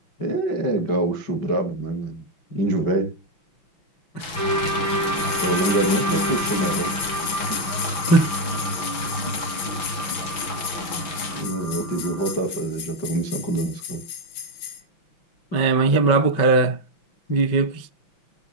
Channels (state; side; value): late; right; 6.0 ms